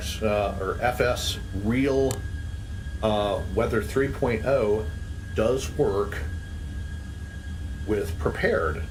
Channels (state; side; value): identical; both; correlation 1.00